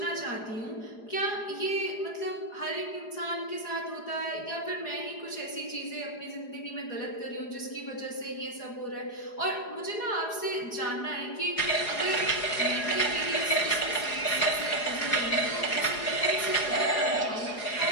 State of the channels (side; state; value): right; late; 4.8 ms